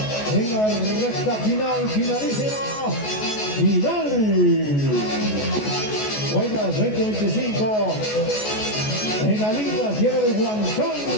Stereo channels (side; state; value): right; late; 14 ms